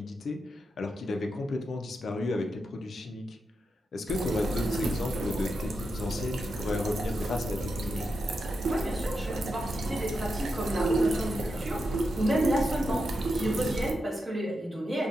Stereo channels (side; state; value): both; normal; correlation 0.87